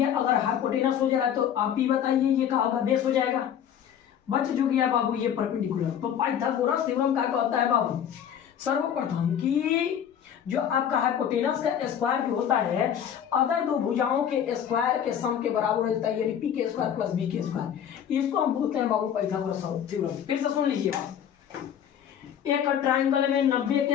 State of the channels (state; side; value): quieter; right; 9.1 dB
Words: अगर हाइपोटेनस हो जा रहा है तो आप ही बताइए ये कहा होगा, बेस हो जाएगा। बच जो गया बाबू ये परपेंडिकुलर। तो पाइथागोरस थ्योरम क्या कहता है बाबू, सर्वप्रथम कि जो आपका हाइपोटेनस का स्क्वायर जो होता है अदर दो भुजाओं के स्क्वायर के सम के बराबर होता है, यानी पी के स्क्वायर प्लस बी के स्क्वायर। इसको हम बोलते हैं बाबू पाइथागोरस थ्योरम। फिर से सुन लीजिएगा, एक ट्रायंगल में 90